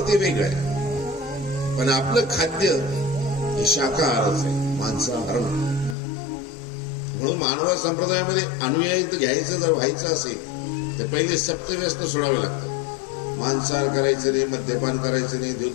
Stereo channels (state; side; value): drops out; right; at 6.0 s